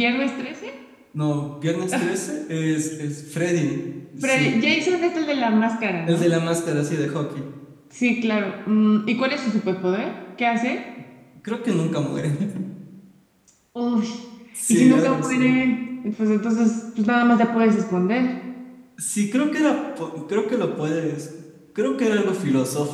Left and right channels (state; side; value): identical; both; correlation 1.00